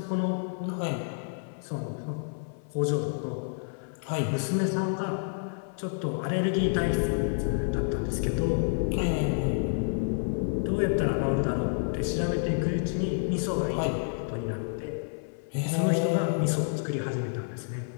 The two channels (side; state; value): right; silent; 58 dB below the other